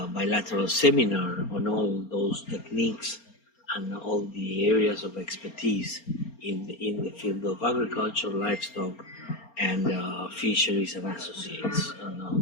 bilateral seminar on all those techniques and all the areas of expertise in the field of agriculture, livestock, and fisheries and associates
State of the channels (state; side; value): late; right; 4.3 ms